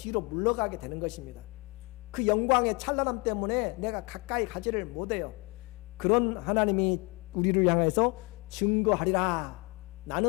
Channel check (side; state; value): right; quieter; 27.9 dB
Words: 물러가게 되는 것입니다. 그 영광의 찬란함 때문에 내가 가까이 가지를 못해요. 그런 하나님이 우리를 향해서 증거하리라,